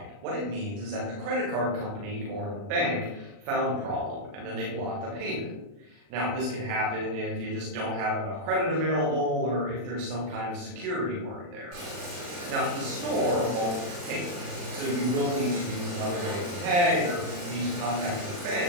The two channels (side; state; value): left; late; 40 ms